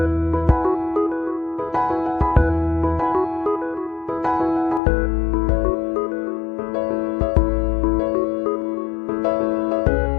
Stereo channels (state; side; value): drops out; right; at 4.8 s